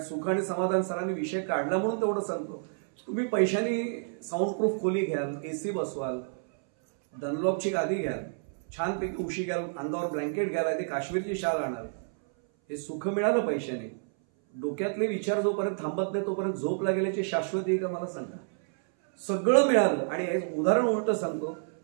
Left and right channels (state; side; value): silent; left; 58 dB below the other